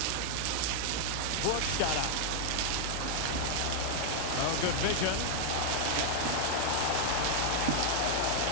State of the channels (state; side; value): different; both; correlation -0.01